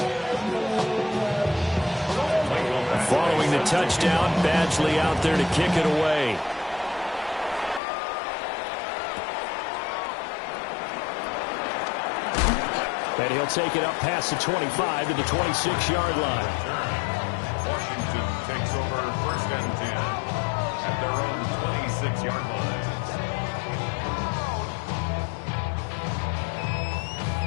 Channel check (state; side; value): drops out; right; at 7.8 s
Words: Following the touchdown, Badgley out there to kick it away. And he'll take it up past the 25 to the 26-yard line. Washington takes over 1st and 10 at their own 26-yard line.